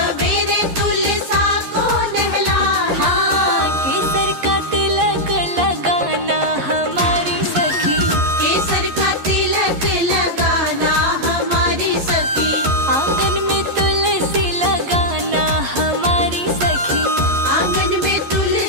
तुलसा को नहलाना। हाँ केसर का तिलक लगाना हमारी सखी, केसर का तिलक लगाना हमारी सखी, आंगन में तुलसी लगाना हमारी सखी, आंगन में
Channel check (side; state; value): left; late; 11 ms